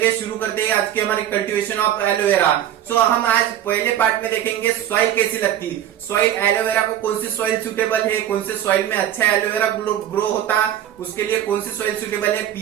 शुरू करते हैं आज के हमारे कल्टीवेशन ऑफ एलोवेरा। सो हम आज पहले पार्ट में देखेंगे सॉइल कैसी लगती, सॉइल एलोवेरा को कौन सी सॉइल सुटेबल है, कौन से सॉइल में अच्छा एलोवेरा ग्रो होता, उसके लिए कौन सी सॉइल सुटेबल है,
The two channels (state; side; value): quieter; left; 11.1 dB